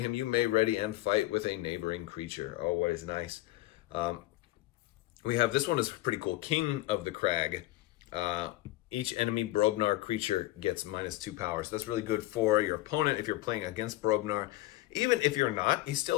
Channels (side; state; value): right; quieter; 17.5 dB